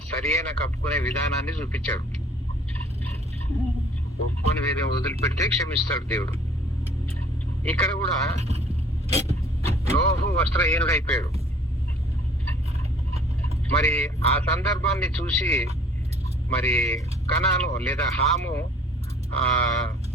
సరి అయిన కప్పుకునే విధానాన్ని చూపించాడు. ఒప్పుకొని వేరే వదిలిపెడితే క్షమిస్తాడు దేవుడు. ఇక్కడ కూడా నోహు వస్త్రహీనుడు అయిపోయాడు. మరి ఆ సందర్భాన్ని చూసి మరి కనాను లేదా హాము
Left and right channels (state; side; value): normal; both; correlation 0.55